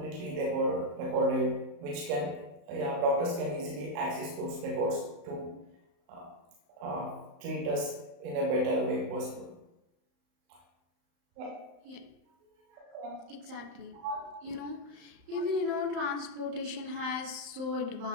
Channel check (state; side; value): late; left; 35 ms